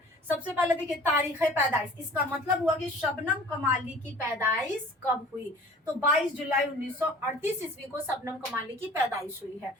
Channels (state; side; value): normal; both; correlation 0.46